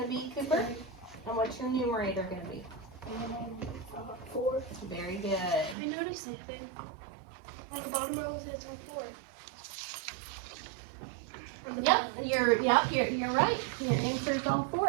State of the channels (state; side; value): drops out; left; at 5.8 s